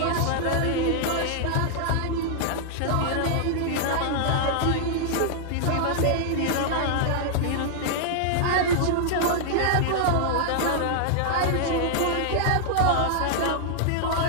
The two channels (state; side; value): different; both; correlation -0.01